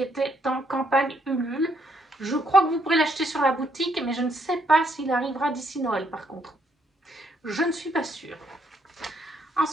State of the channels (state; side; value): normal; both; correlation 0.72